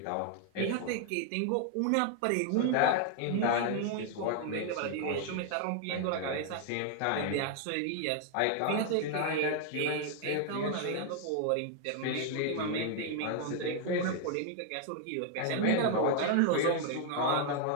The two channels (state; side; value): different; both; correlation 0.00